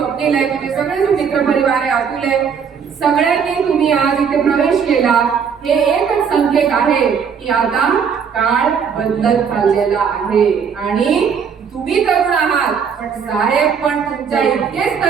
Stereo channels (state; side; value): quieter; left; 6.7 dB